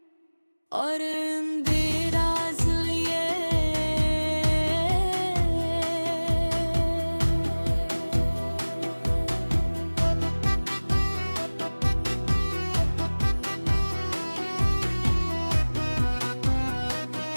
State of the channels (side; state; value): both; inverted; correlation -1.00